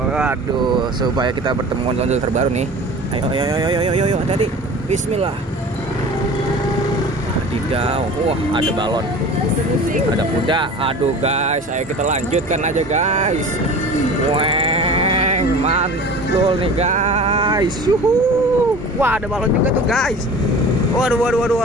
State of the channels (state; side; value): normal; both; correlation 0.39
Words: supaya kita bertemu ondel terbaru nih. Ayo, hati-hati. Bismillah. Wadidaw, ada balon, ada kuda. Aduh guys, ayo kita lanjutkan aja guys. Weng, mantul nih guys. Wah, ada balon juga tuh guys. Waduh,